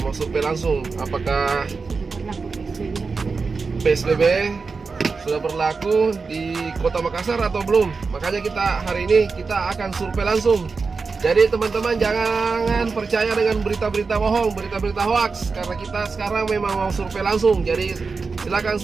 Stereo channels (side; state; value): left; quieter; 4.6 dB